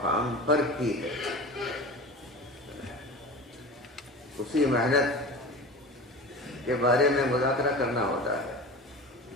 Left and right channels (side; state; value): both; normal; correlation 0.33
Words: پر کی ہے۔ اسی محنت کے بارے میں مذاکرہ کرنا ہوتا ہے،